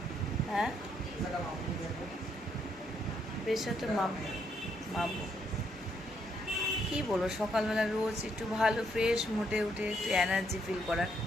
হ্যাঁ, প্রেশারটা মাপবো। কী বলবো, সকালবেলা রোজ একটু ভালো ফ্রেশ মুডে উঠে একটু এনার্জি ফিল করার,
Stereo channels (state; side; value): normal; both; correlation 0.74